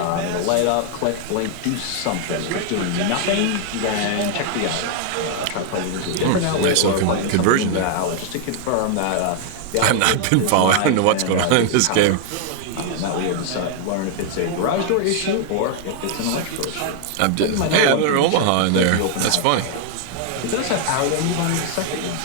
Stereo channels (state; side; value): different; both; correlation 0.00